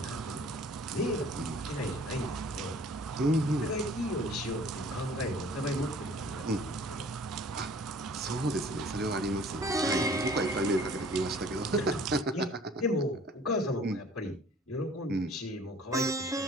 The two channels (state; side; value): normal; both; correlation 0.52